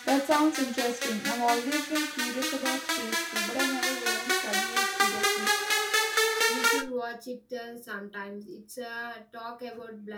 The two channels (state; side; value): identical; both; correlation 1.00